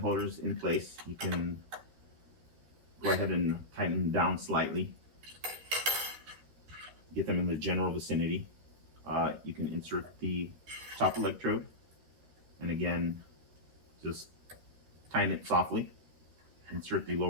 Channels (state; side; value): late; left; 13 ms